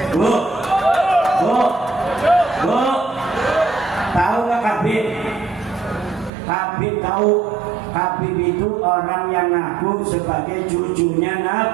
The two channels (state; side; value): drops out; left; at 6.3 s